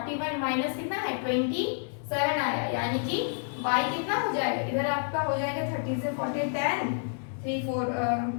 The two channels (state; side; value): silent; right; 58 dB below the other